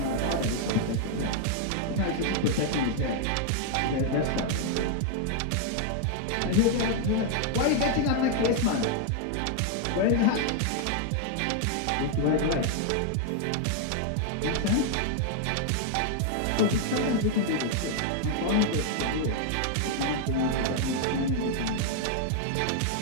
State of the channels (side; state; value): both; different; correlation 0.00